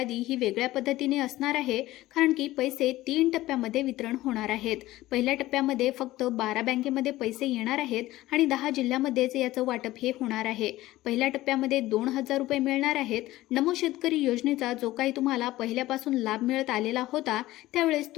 ही वेगळ्या पद्धतीने असणार आहे, कारण की पैसे 3 टप्प्यामध्ये वितरण होणार आहेत। पहिल्या टप्प्यामध्ये फक्त 12 बँकेमध्ये पैसे येणार आहेत आणि 10 जिल्ह्यामध्येच याचं वाटप हे होणार आहे। पहिल्या टप्प्यामध्ये 2000 रुपये मिळणार आहेत। नमो शेतकरी योजनेचा जो काही तुम्हाला पहिल्यापासून लाभ मिळत आलेला होता, त्यावेळेस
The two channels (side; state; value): right; quieter; 16.7 dB